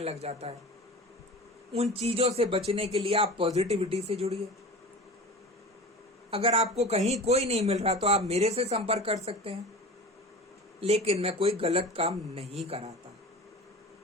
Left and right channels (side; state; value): both; normal; correlation 0.35